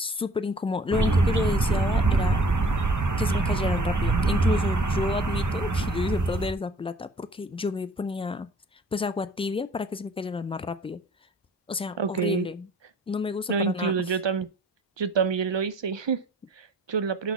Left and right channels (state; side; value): normal; both; correlation 0.53